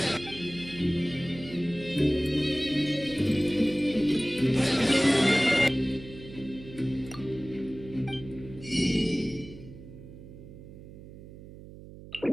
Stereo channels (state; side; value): noise; right; hum, 16 dB below the sound